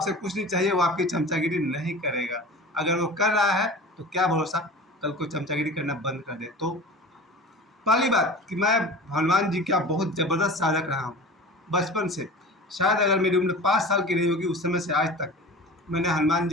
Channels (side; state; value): both; normal; correlation 0.36